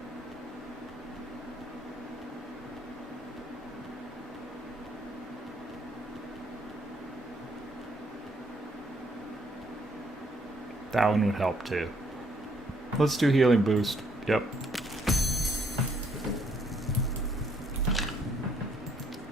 That one would help too. Let's do healing boost. Yep.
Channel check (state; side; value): normal; both; correlation 0.69